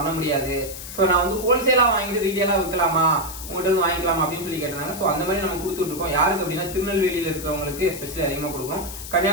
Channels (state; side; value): noise; left; hiss, 11 dB below the sound